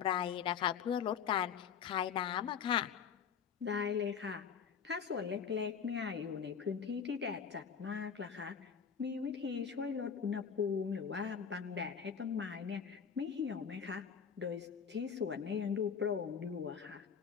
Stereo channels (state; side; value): quieter; right; 7.1 dB